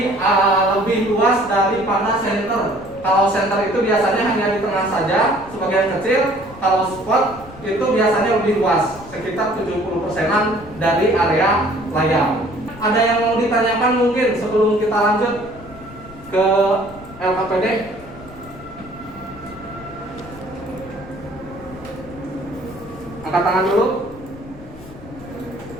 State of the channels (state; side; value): noise; left; rumble, 18 dB below the sound